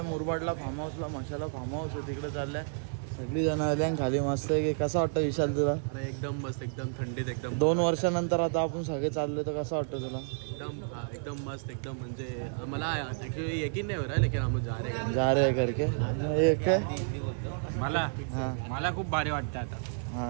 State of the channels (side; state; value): left; silent; digital silence